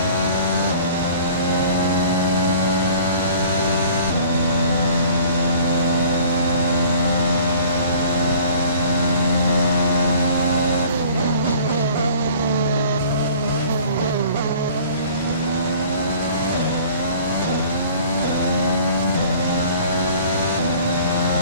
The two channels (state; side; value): inverted; both; correlation -0.50